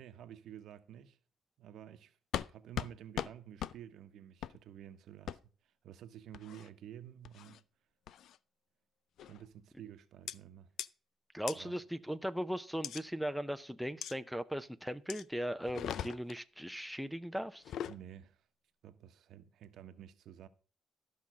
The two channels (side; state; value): both; normal; correlation 0.82